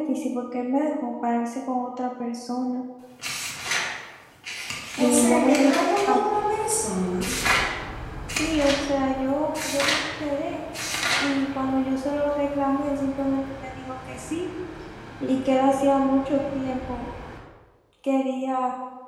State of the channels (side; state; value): both; identical; correlation 1.00